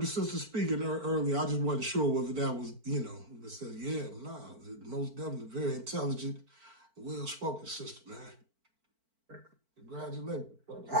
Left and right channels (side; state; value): left; late; 4.5 ms